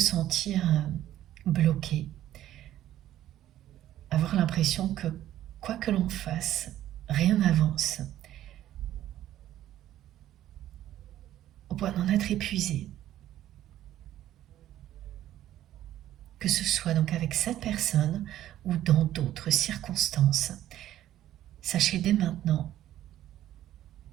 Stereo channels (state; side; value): quieter; left; 12.9 dB